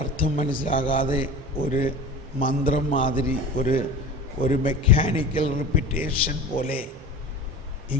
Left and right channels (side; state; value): both; normal; correlation 0.34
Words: അർത്ഥം മനസ്സിലാകാതെ ഒരു മന്ത്രം മാതിരി ഒരു മെക്കാനിക്കൽ റിപ്പീറ്റേഷൻ പോലെ